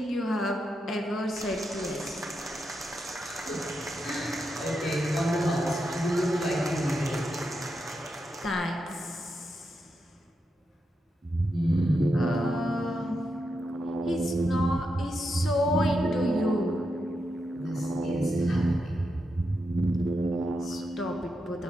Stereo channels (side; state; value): both; normal; correlation 0.85